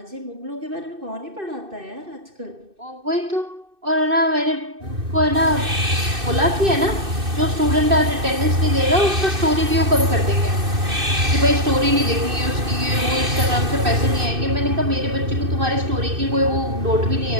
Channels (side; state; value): left; late; 2.6 ms